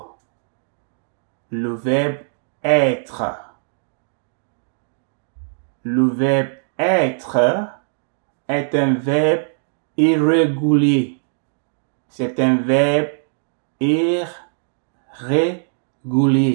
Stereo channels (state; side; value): silent; left; digital silence